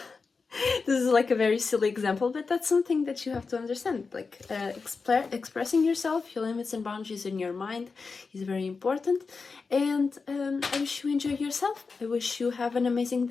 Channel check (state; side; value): quieter; right; 4.6 dB